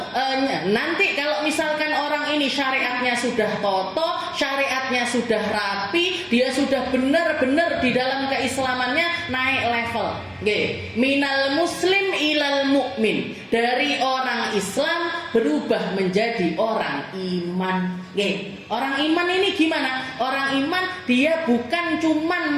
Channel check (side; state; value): both; identical; correlation 1.00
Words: nanti kalau misalkan orang ini syariatnya sudah kokoh, syariatnya sudah rapi, dia sudah benar-benar di dalam keislamannya naik level. Minal muslim ilal mu'min, dari orang Islam berubah menjadi orang iman. Orang iman ini gimana? Orang iman dia bukan cuman